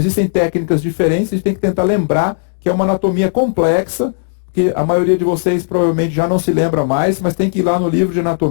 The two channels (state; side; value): silent; right; digital silence